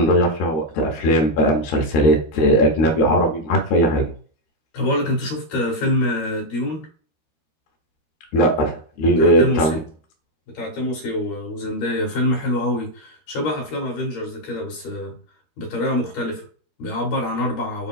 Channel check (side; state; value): right; late; 13 ms